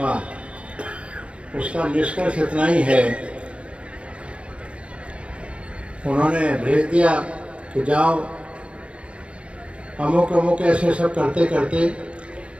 उसका निष्कर्ष इतना ही है, उन्होंने भेज दिया कि जाओ अमुक अमुक ऐसे सब करते करते,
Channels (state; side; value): late; left; 0.060 ms